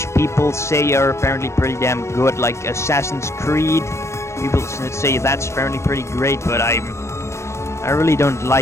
people say are apparently pretty damn good, like Assassin's Creed. People say that's apparently pretty great, but I really don't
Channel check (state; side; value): late; right; 0.13 ms